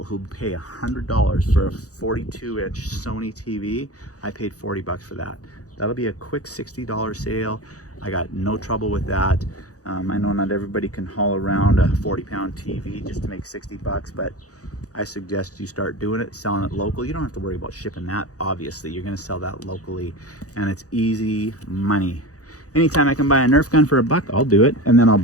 who pay $100 for a 42-inch Sony TV. I paid 40 bucks for that. That'll be a quick $60 sale. I got no trouble with that. I know not everybody can haul around a 40-pound TV just to make 60 bucks, but I suggest you start doing it, selling it local. You don't have to worry about shipping that, obviously. You're gonna sell that locally, and it's easy money. Anytime I can buy a Nerf gun for $1, I'll do it, and then I'll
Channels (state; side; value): late; right; 0.67 ms